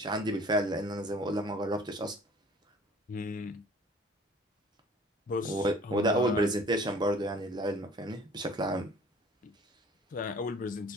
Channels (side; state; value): both; normal; correlation 0.50